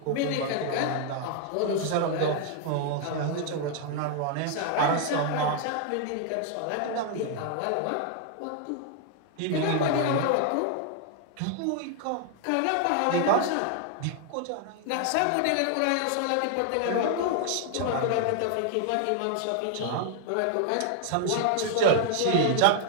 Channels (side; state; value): both; different; correlation 0.00